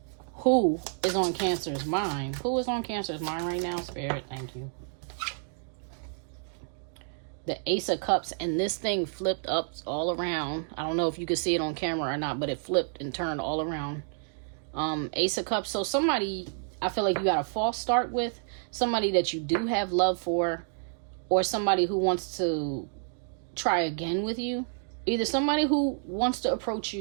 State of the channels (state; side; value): silent; left; 58 dB below the other